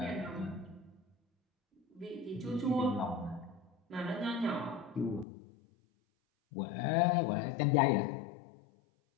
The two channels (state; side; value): drops out; right; at 5.2 s